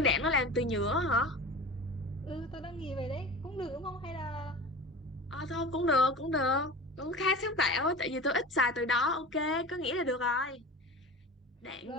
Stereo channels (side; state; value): both; normal; correlation 0.33